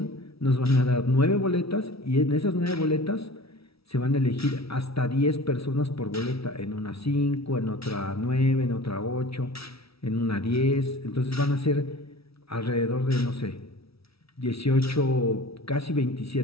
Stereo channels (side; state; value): right; late; 0.76 ms